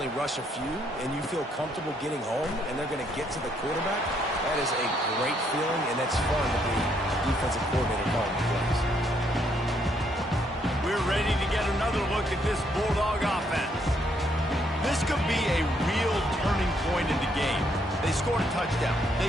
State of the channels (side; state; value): both; normal; correlation 0.72